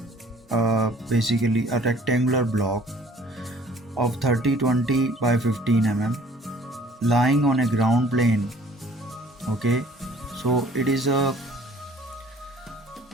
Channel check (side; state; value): both; normal; correlation 0.54